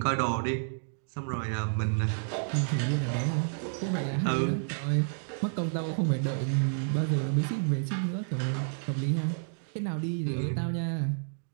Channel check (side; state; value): left; silent; digital silence